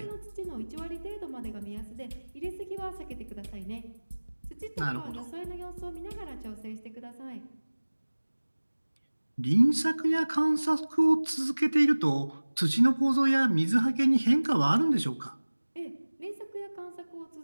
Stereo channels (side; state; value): both; inverted; correlation -1.00